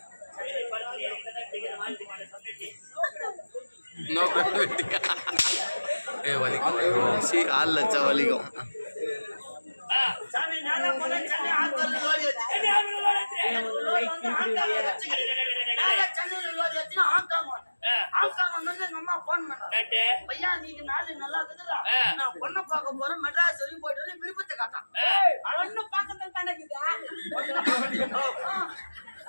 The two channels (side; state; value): both; inverted; correlation -1.00